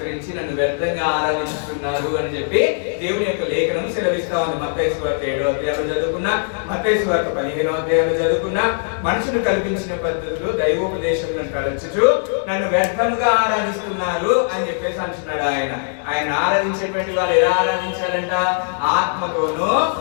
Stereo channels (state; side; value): silent; right; digital silence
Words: నన్ను వ్యర్థంగా ఆరాధిస్తున్నారు అని చెప్పి దేవుని యొక్క లేఖనం సెలవిస్తా ఉంది. మత్తయి సువార్త 7వ అధ్యాయంలో చదువుకున్నా, మత్తయి సువార్త 15వ అధ్యాయంలో చదువుకున్నా, మనుషులు కల్పించిన పద్ధతులు దైవోపదేశములను తరచుచు నన్ను వ్యర్థంగా ఆరాధిస్తున్నారు అని చెప్పేసి అంటున్నాడు ఆయన. ఆయన ఆరాధించేటువంటి వాళ్ళు ఎలా ఆరాధించాలంట? ఆత్మతోనూ